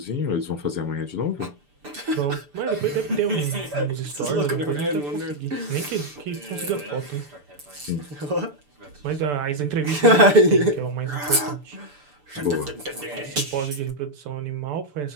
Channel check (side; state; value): left; late; 6.9 ms